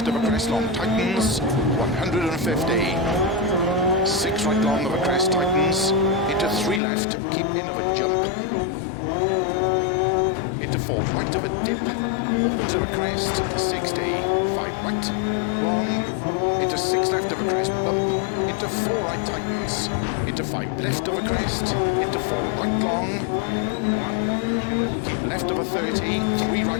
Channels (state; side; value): drops out; right; at 6.8 s